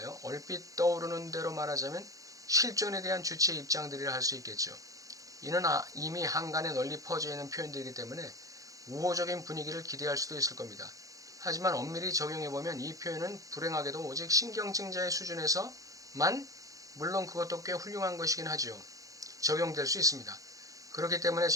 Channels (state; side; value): late; left; 0.17 ms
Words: 얼핏 떠오르는 대로 말하자면 실존에 대한 주체의 입장들이라 할 수 있겠죠. 이는 이미 한간에 널리 퍼져 있는 표현들이기 때문에 우호적인 분위기를 기대할 수도 있을 겁니다. 하지만 엄밀히 적용해보면 이 표현은 불행하게도 오직 신경증자의 수준에서만, 물론 그것도 꽤 훌륭한 것이긴 하죠, 적용될 수 있습니다. 그렇기 때문에